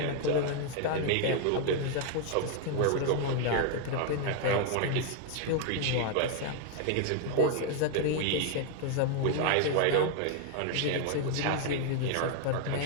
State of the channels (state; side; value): different; both; correlation 0.00